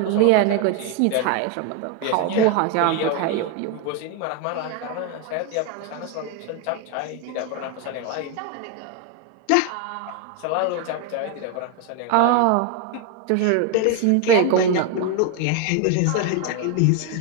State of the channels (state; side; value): different; both; correlation 0.01